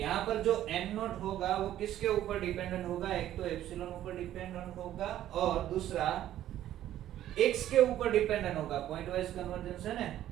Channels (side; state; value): left; quieter; 12.5 dB